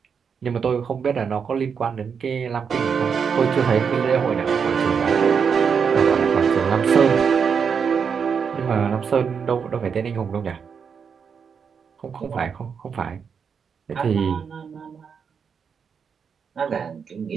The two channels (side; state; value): left; quieter; 6.5 dB